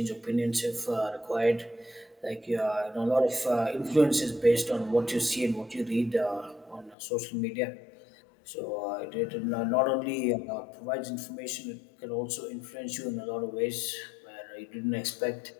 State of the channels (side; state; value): right; drops out; at 7.0 s